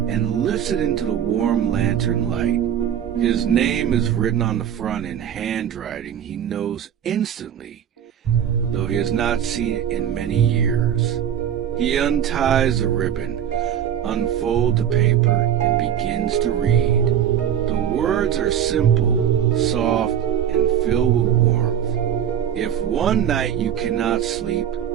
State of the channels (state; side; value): quieter; left; 9.5 dB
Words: and lifts it into the warm lantern light. His name is written on the front in handwriting he knows instantly, though he has not seen it in many years. He unties the ribbon, unfolds the paper, and begins to read. The words are simple, soft, and filled with warmth. If one night you cannot sleep,